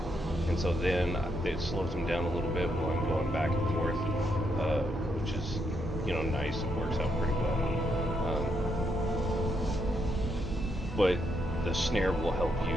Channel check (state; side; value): normal; both; correlation 0.78